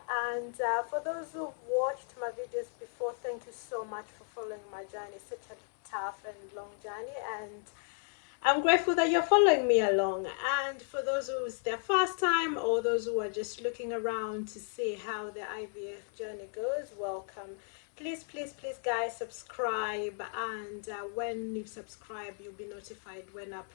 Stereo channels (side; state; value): right; silent; 55 dB below the other